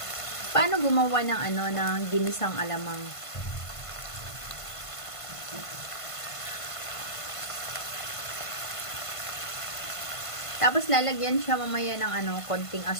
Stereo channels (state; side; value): late; right; 1.5 ms